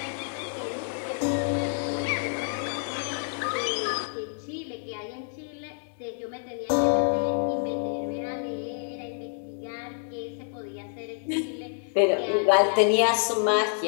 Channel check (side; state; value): right; silent; digital silence